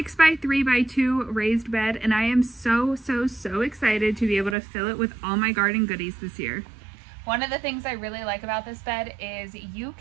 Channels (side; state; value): left; drops out; at 4.5 s